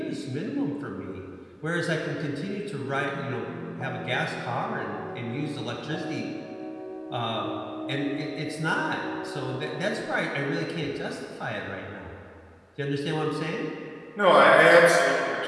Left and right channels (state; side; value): identical; both; correlation 1.00